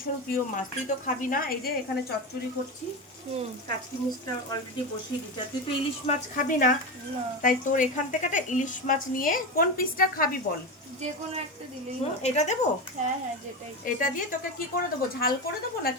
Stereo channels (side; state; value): both; normal; correlation 0.18